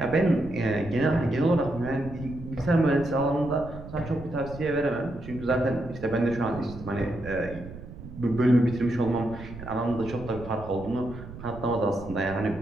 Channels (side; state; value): right; noise; rumble, 13 dB below the sound